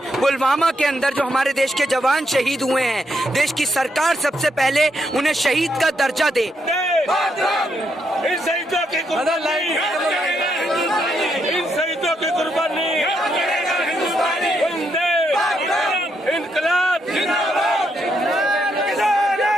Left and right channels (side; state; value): both; normal; correlation 0.78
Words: पुलवामा के अंदर जो हमारे देश के जवान शहीद हुए हैं, देश की सरकार सबसे पहले उन्हें शहीद का दर्जा दे। इनकलाब